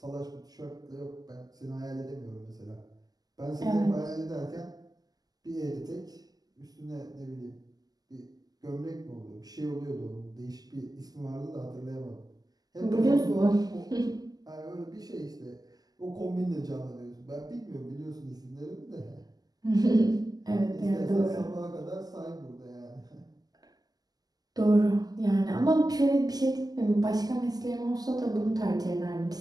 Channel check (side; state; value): left; late; 0.19 ms